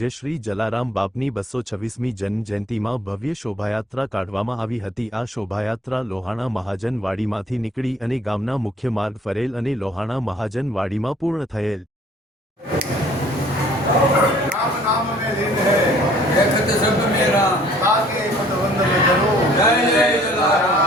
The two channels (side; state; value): both; normal; correlation 0.57